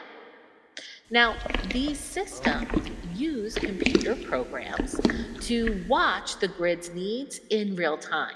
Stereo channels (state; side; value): identical; both; correlation 1.00